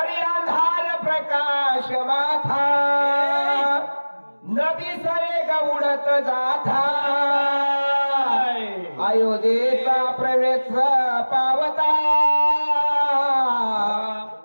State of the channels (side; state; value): both; inverted; correlation -1.00